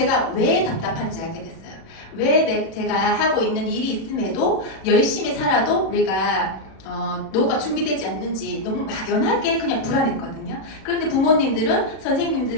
왜 답답한지 알게 됐어요. 왜 제가 하고 있는 일이 있음에도 열심히 살아도 우리가 노후가 준비되지 않는지 너무 막연하게 그냥 불안했거든요. 그런데 부모님들은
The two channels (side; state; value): right; late; 37 ms